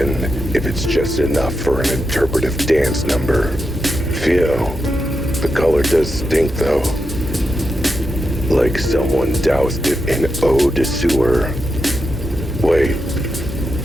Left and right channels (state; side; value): normal; both; correlation 0.87